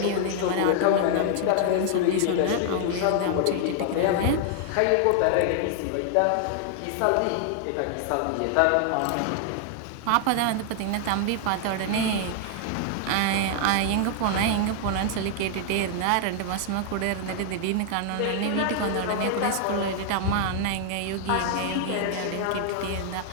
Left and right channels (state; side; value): different; both; correlation 0.00